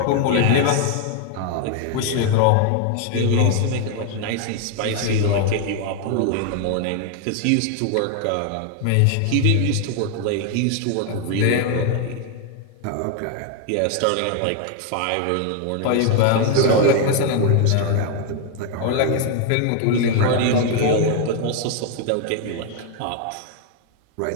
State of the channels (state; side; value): different; both; correlation 0.01